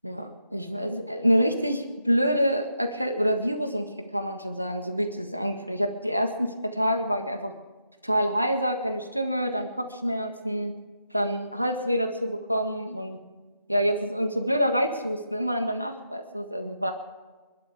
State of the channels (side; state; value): both; inverted; correlation -0.82